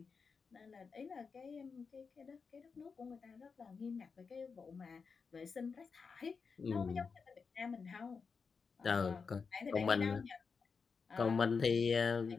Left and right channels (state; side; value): quieter; right; 5.3 dB